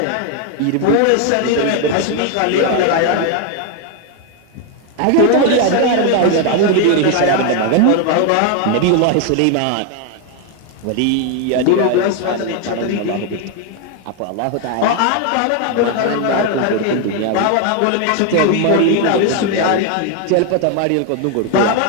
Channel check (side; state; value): both; different; correlation 0.01